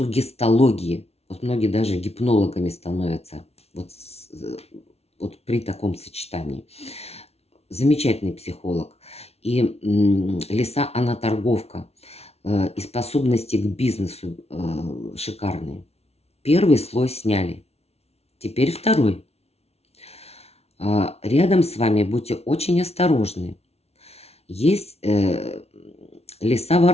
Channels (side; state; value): right; late; 0.30 ms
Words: Вот многие даже гипнологами становятся вот при таком сочетании. Замечательный психолог. И лиса, она торговка. и способности к бизнесу шикарные. Первый слой сняли. Теперь второй. Рядом с вами будьте очень осторожны. Есть